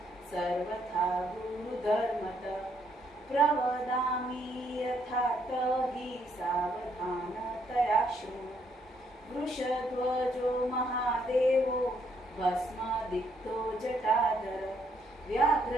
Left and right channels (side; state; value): both; normal; correlation 0.72